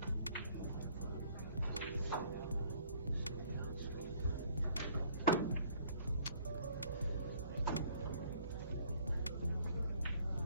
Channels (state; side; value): inverted; both; correlation -0.58